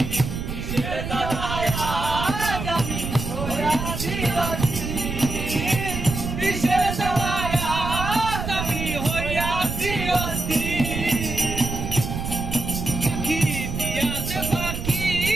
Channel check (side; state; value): right; noise; rumble, 5 dB below the sound